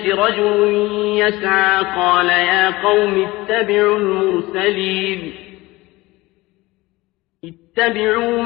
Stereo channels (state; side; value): quieter; right; 20.3 dB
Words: رجل يسعى قال يا قوم اتبعوا المرسلين اتبعوا